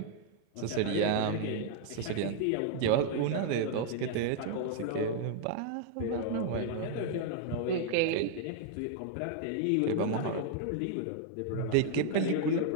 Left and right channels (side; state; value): both; different; correlation -0.01